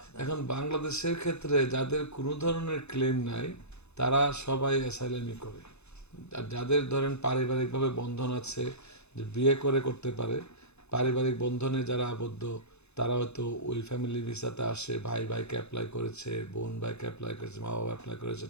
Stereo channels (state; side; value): late; right; 0.81 ms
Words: তারা এখন বেশি? বাংলাদেশের ক্ষেত্রে যাদের কোনো ধরনের ক্লেম নাই তারা সবাই অ্যাসাইলামই করে। আর যাদের ধরেন পারিবারিকভাবে বন্ধন আছে, যে বিয়ে করে করতে পারে, পারিবারিক বন্ধনে যারা আবদ্ধ, তারা হয়তো ওই ফ্যামিলি ভিসাতে আসে, ভাই ভাইকে অ্যাপ্লাই করেছে, বোন ভাইকে অ্যাপ্লাই করেছে, মা বাবা অ্যাপ্লাই করেছে,